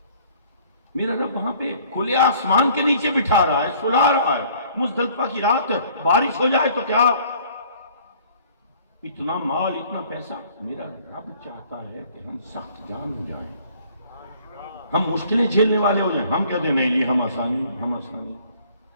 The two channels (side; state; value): both; inverted; correlation -0.56